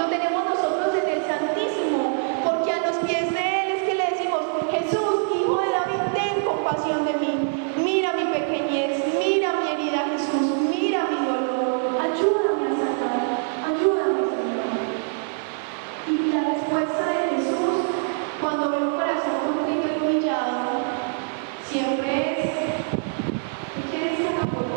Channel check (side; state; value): left; silent; digital silence